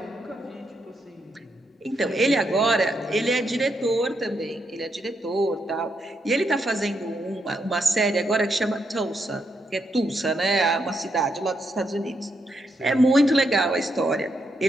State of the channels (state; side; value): normal; both; correlation 0.80